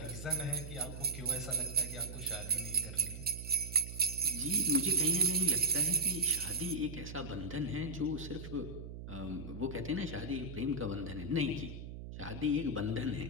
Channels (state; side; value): noise; right; hum, 10 dB below the sound